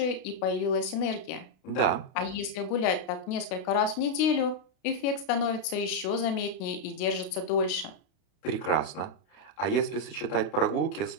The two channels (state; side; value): late; right; 32 ms